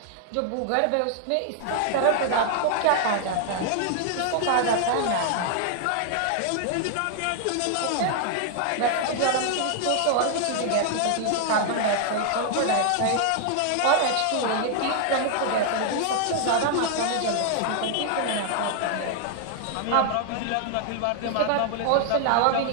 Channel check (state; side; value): different; both; correlation 0.00